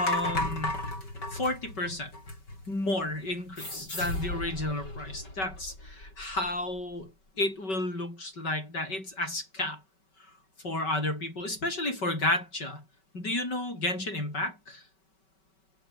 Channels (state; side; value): late; right; 5.3 ms